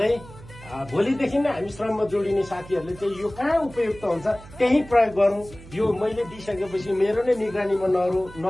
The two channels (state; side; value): noise; right; hum, 18 dB below the sound